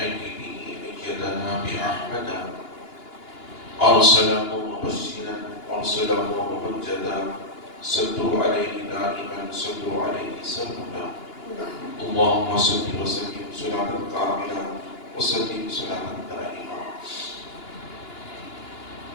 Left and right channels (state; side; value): late; right; 2.9 ms